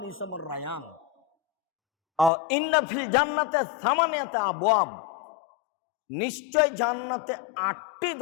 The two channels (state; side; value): drops out; right; at 2.3 s